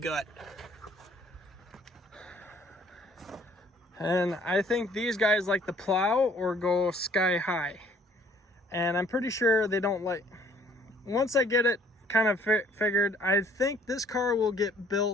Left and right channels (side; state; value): both; normal; correlation 0.59